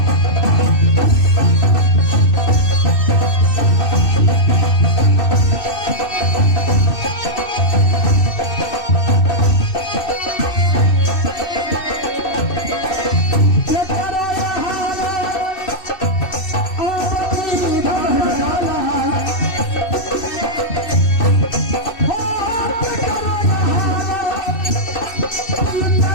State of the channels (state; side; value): late; right; 2.6 ms